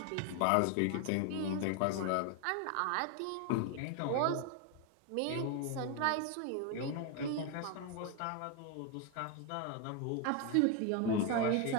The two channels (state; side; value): different; both; correlation 0.01